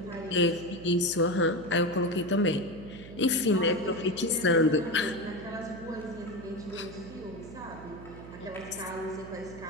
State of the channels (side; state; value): right; noise; hum, 15 dB below the sound